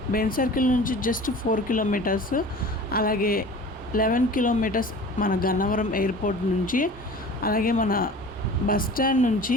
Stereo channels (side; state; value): both; normal; correlation 0.40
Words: బెన్ సర్కిల్ నుంచి జస్ట్ 4 కిలోమీటర్స్, అలాగే 11 కిలోమీటర్స్ మన గన్నవరం ఎయిర్పోర్ట్ నుంచి, అలాగే మన బస్ స్టాండ్ నుంచి